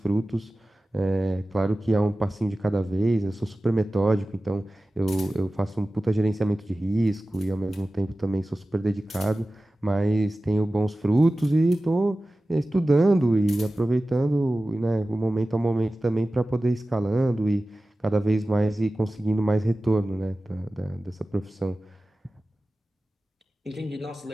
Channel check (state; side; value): normal; both; correlation 0.96